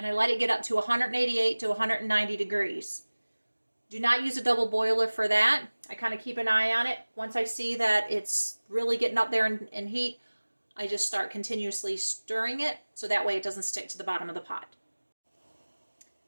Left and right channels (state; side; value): inverted; both; correlation -1.00